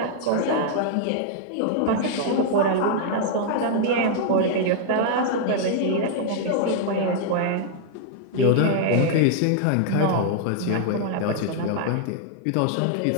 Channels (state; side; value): different; both; correlation -0.01